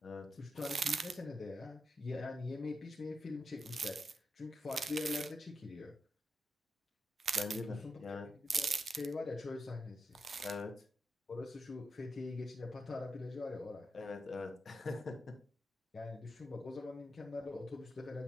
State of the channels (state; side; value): normal; both; correlation 0.86